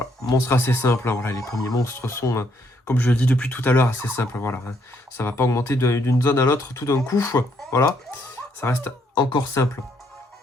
Monstre assez simple, hein, voilà, les premiers monstres sont, comme je le dis depuis tout à l'heure, assez simples, voilà. Hein. Ça va pas augmenter d'une zone à l'autre tout d'un coup, voilà. Ça reste encore simple.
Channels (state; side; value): normal; both; correlation 0.71